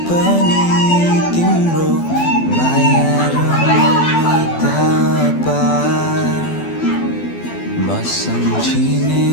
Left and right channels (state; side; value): late; right; 12 ms